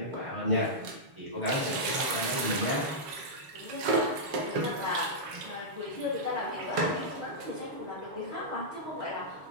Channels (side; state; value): left; late; 7.2 ms